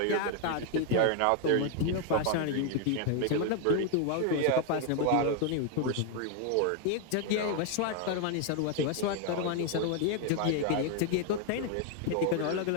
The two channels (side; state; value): both; different; correlation 0.00